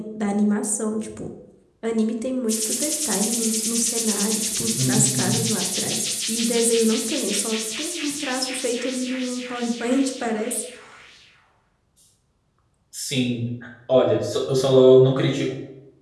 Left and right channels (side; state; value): both; identical; correlation 1.00